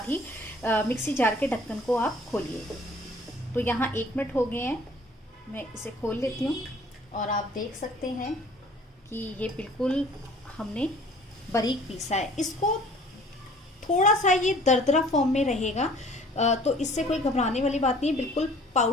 ही मिक्सी जार के ढक्कन को आप खोलिए। तो यहाँ 1 मिनट हो गए हैं, मैं इसे खोल लेती हूँ और आप देख सकते हैं कि ये बिल्कुल हमने बारीक पीसा है। इसको थोड़ा सा ये दरदरा फॉर्म में रहेगा, तो इससे कोई घबराने वाली बात नहीं है। बिल्कुल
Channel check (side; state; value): both; normal; correlation 0.52